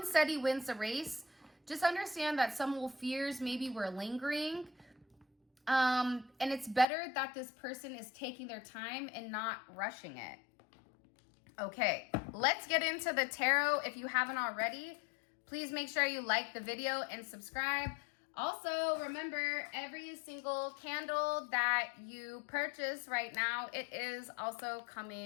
steady wins the race. Just understand that some little fears maybe were lingering. And it's better that this person is taking their time and not rushing it. Okay, let's get into the tarot. If you haven't already, please make sure you like the video and subscribe. Also, remember, every single candle that you purchase right now, it is also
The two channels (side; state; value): right; drops out; at 6.9 s